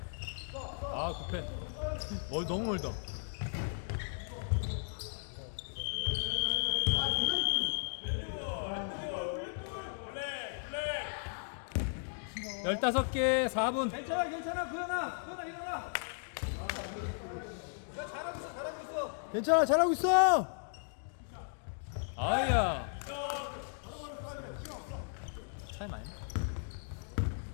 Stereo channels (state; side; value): silent; right; digital silence